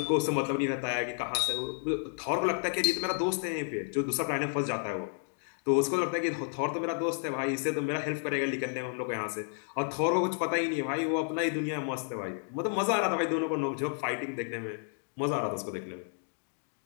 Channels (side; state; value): right; silent; 57 dB below the other